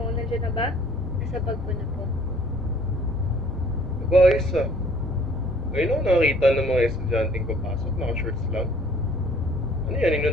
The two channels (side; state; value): both; normal; correlation 0.56